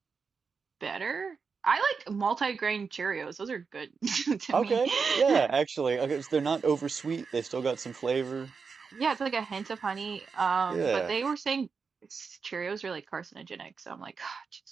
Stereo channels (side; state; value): left; quieter; 5.3 dB